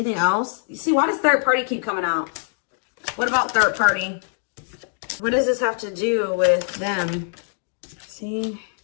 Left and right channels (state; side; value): silent; right; 56 dB below the other